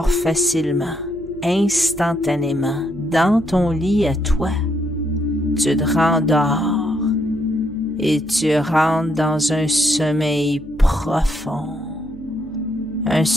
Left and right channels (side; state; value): right; noise; hum, 19 dB below the sound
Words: facilement, instantanément, dans ton lit à toi. Tu te rendors et tu rentres dans un sommeil profond. Un